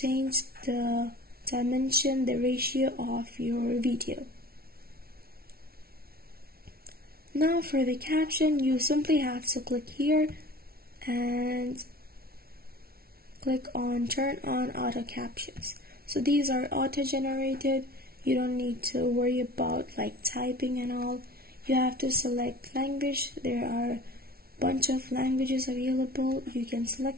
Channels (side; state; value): left; late; 0.44 ms